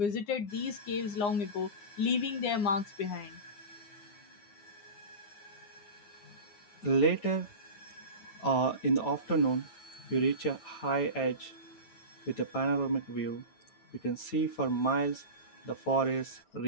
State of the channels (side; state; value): right; late; 9.1 ms